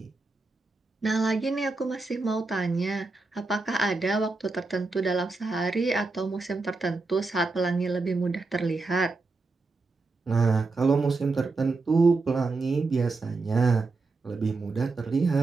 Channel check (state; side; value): quieter; left; 3.7 dB